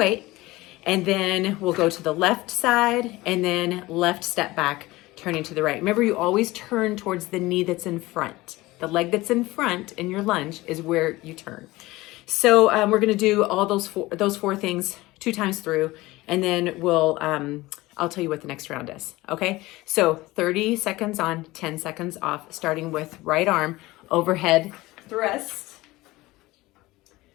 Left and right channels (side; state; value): right; quieter; 19.5 dB